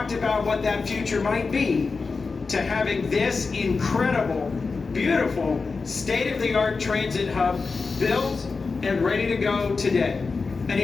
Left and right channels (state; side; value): quieter; right; 4.4 dB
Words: about what that future might be, to having this incredible, beautiful, state-of-the-art transit hub built and ready to go today. And